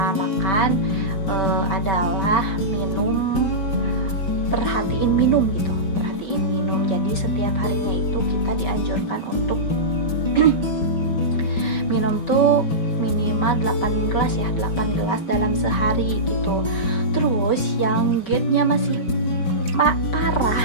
makan adalah perhatiin minum. Jadi setiap harinya itu kita dianjurkan untuk minum tuh minimal 8 gelas dalam sehari gitu. Terus yang GERD-nya masih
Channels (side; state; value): right; late; 5.2 ms